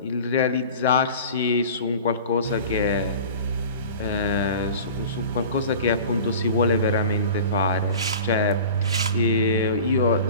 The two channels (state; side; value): inverted; both; correlation -0.38